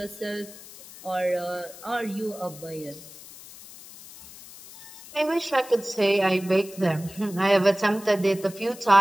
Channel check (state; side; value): noise; left; hiss, 17 dB below the sound